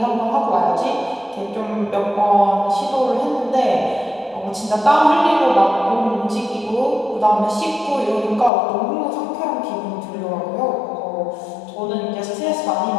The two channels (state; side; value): drops out; right; at 8.5 s